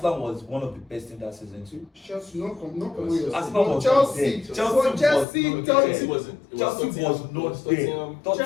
was one of the best in that season too. Chelsea, not come with your Arsenal was Chelsea. there. Chelsea, was Chelsea wasn't. Chelsea was not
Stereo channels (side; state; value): right; drops out; at 5.2 s